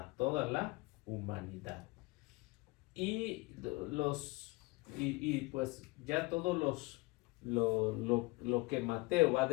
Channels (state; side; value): quieter; right; 23.7 dB